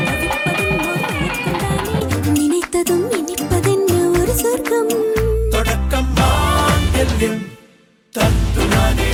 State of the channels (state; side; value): identical; both; correlation 1.00